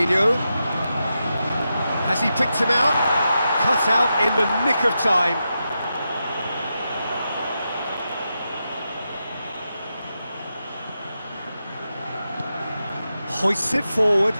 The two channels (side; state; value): both; inverted; correlation -0.88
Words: Has he picked him out? Cut out in the nick of time. Hoists it forward.